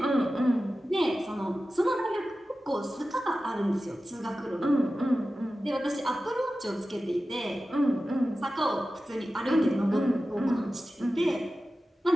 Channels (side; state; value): both; normal; correlation 0.94